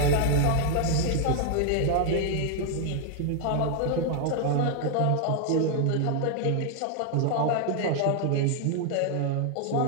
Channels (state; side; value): different; both; correlation 0.00